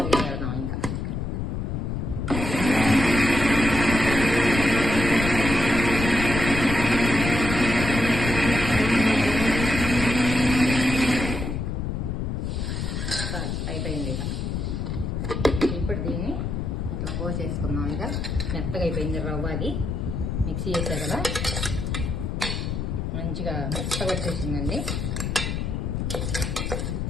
పెడదాం ఇంకా. అయిపోయింది ఇక. ఇప్పుడు దీన్ని ఇట్లా పోసేసుకుందాం. ఇక మెత్తగా అయిపోయింది రవ్వ, అది మిక్సీ చేసా కదా, మంచిగా మెత్తగా వచ్చేసిందండి.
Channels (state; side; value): noise; left; rumble, 2 dB below the sound